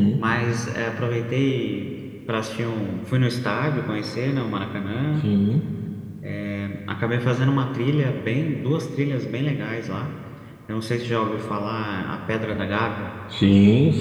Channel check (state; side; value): identical; both; correlation 1.00